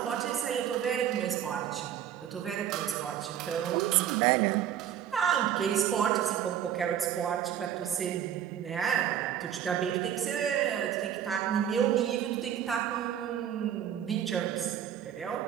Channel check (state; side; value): quieter; left; 9.9 dB